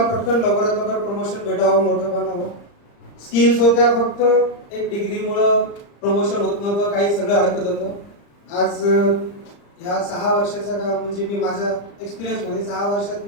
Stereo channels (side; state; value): right; late; 35 ms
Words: पटकन लवकरात लवकर प्रमोशन भेटावं, मोठं बनावं. स्किल्स होत्या, फक्त एक डिग्रीमुळं प्रमोशन होत नव्हतं, काही सगळं अडकत होतं. आज ह्या 6 वर्षाचा का म्हणजे मी माझ्या एक्सपिरियन्समध्ये 6 वर्षात